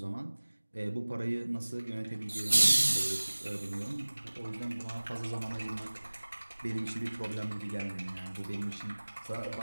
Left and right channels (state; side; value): inverted; both; correlation -1.00